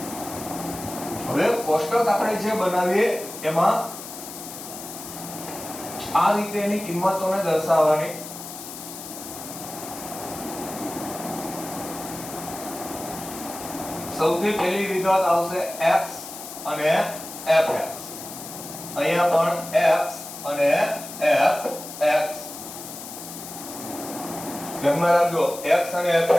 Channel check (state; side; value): noise; left; hiss, 11 dB below the sound